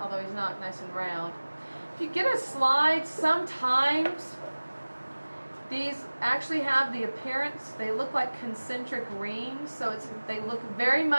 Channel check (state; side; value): inverted; both; correlation -1.00